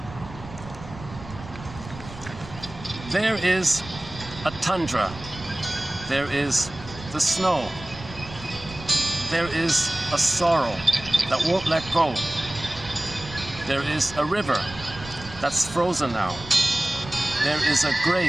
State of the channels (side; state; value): right; noise; rumble, 15 dB below the sound